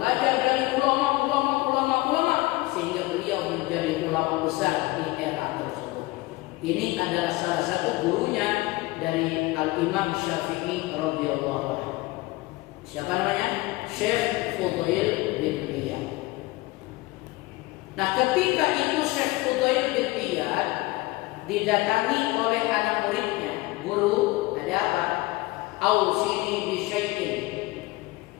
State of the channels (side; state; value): right; quieter; 21.1 dB